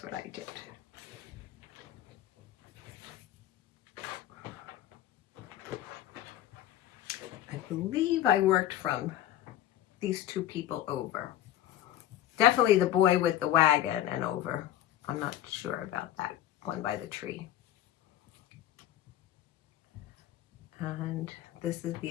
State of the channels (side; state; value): right; quieter; 12.7 dB